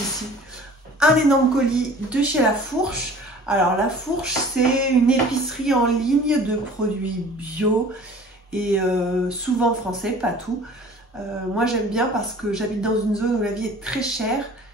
un énorme colis de chez La Fourche. Alors La Fourche, c'est une épicerie en ligne de produits bio et souvent français, pas tout. Moi j'aime bien parce que j'habite dans une zone où la vie est très chère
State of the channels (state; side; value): normal; both; correlation 0.46